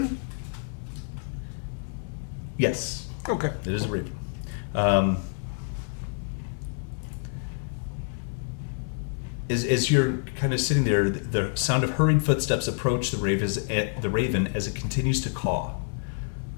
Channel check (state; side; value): silent; right; 60 dB below the other